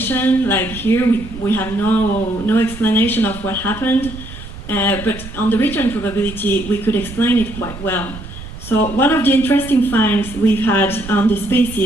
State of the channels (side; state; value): right; noise; rumble, 13 dB below the sound